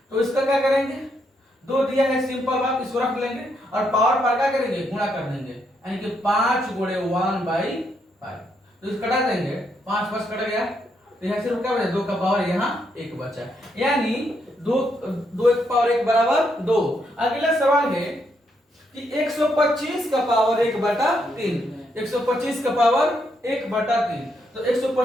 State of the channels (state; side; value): normal; both; correlation 0.77